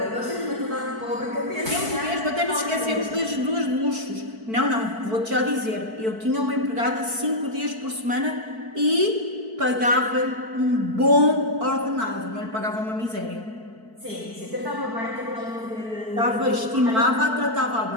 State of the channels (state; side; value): late; left; 4.5 ms